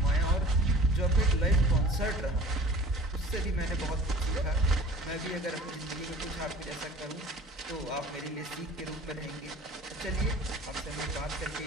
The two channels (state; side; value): normal; both; correlation 0.44